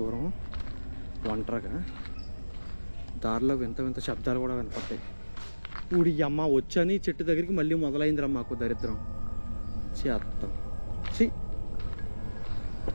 ఒంటరిగా. దారిలో వింత శబ్దాలు కూడా వినపడతాయి. ఊడి అమ్మ వచ్చని చెట్టు దగ్గరికి మళ్ళీ మొదలైందిరా మాకు దరిద్రం. చేత్తాం చి.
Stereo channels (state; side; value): inverted; both; correlation -1.00